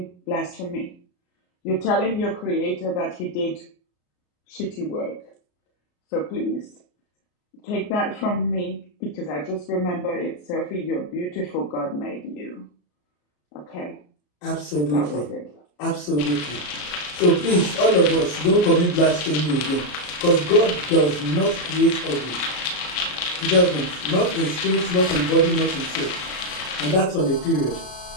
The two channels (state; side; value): late; right; 34 ms